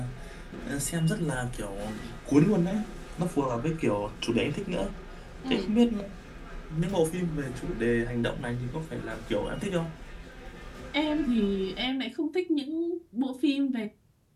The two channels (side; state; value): both; identical; correlation 1.00